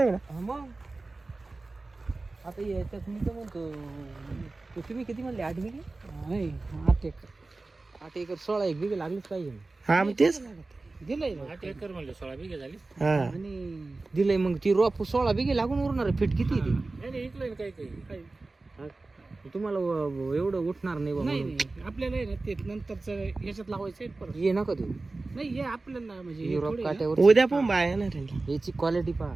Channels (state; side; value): quieter; left; 3.4 dB